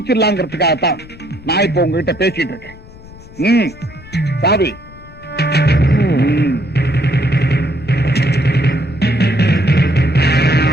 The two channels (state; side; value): noise; left; rumble, 20 dB below the sound